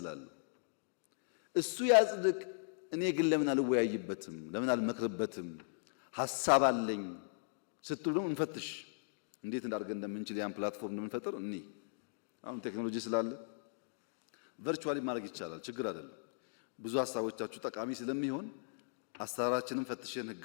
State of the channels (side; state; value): right; silent; digital silence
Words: እሱ ያጽድቅ። እኔ ግን ለምን አልወያይበትም? ለምን አልመክርበትም? ሐሳብ አለኝ ስትሉ እንፈትሽ። እንዴት እንዳርገን እንደምንችል ያን ፕላትፎርም እንደምንፈጥር እኔ አሁን ቴክኖሎጂ ስላለ ቨርቹዋሊ ማድረግ ይቻላል። ችግር አይደለም። ብዙ ሐሳቦቻችሁ ጠቃሚ ስለሚሆን አሰራራችንን ፈትሸን